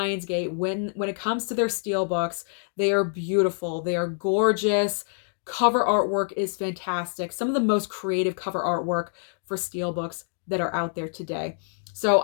when it comes to their steelbooks, they are beautiful. They are gorgeous. Cover artwork is fantastic. Some of the most creative cover artwork for steelbooks that are out there today. So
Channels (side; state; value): right; silent; 61 dB below the other